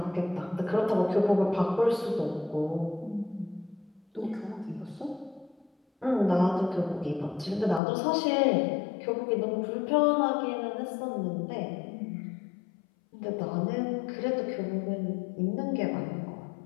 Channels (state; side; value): drops out; right; at 7.8 s